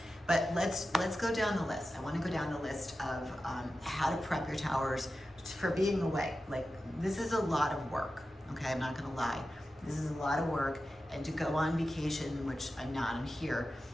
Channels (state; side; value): normal; both; correlation 0.93